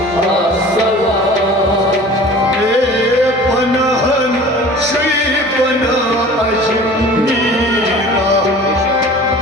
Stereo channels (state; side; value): normal; both; correlation 0.43